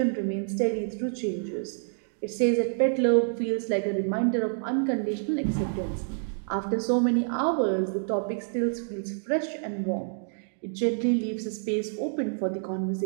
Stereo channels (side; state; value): left; silent; digital silence